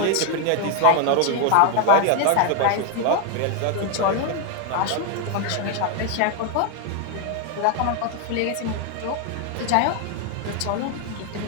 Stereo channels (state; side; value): different; both; correlation 0.01